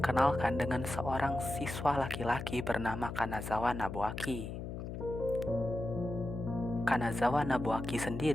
dengan seorang siswa laki-laki bernama Kanazawa Nobuaki. Kanazawa Nobuaki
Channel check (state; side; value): noise; left; hum, 7 dB below the sound